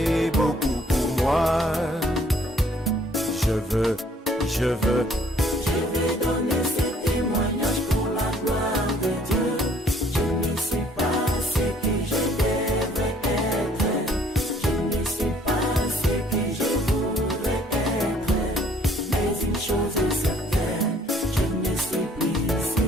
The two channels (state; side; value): normal; both; correlation 0.60